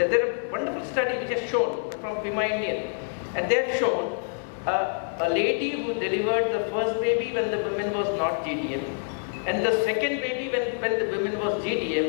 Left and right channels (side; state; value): right; silent; 61 dB below the other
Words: are wonderful study which has shown from Pima Indian, and they have shown a lady who delivered the first baby when the woman was not GDM, and the second baby when the woman was